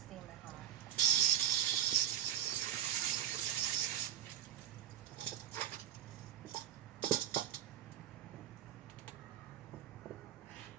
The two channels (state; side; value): quieter; left; 11.3 dB